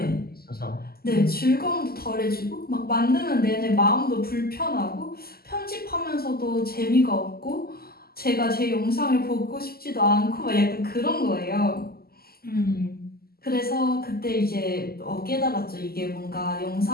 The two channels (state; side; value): late; right; 0.45 ms